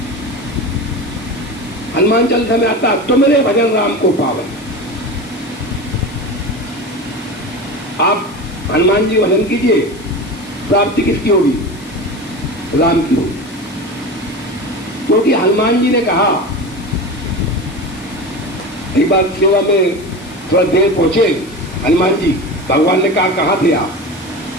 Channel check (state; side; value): noise; left; hiss, 21 dB below the sound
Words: हनुमान चालीसा में आता, तुमरे भजन राम को पावे। आप हनुमान जी भजन कीजिए, प्राप्ति किसकी होगी, राम की होगी। क्योंकि हनुमान जी ने कहा, एक बार सेवा में थोड़ा देर पहुंचे हनुमान जी, भगवान ने कहा कहाँ थे आप।